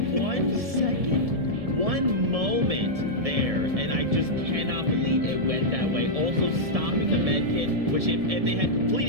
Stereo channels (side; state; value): left; late; 1.7 ms